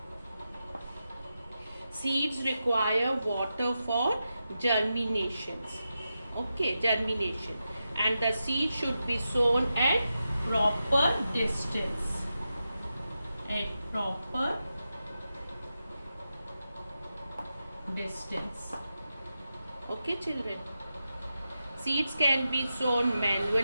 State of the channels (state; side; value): inverted; both; correlation -0.89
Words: Seeds require water for germinations. Okay, germination. And the seed should be sown at proper distance. At proper distance. Okay, children. Seeds can be sown